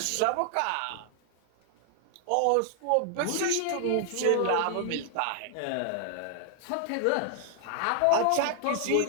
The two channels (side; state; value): both; different; correlation 0.00